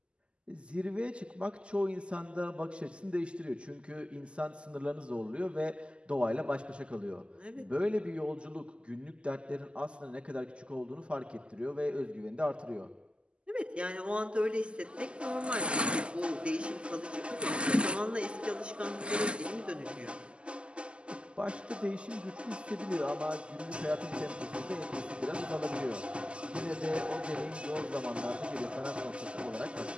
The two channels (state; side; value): late; left; 0.053 ms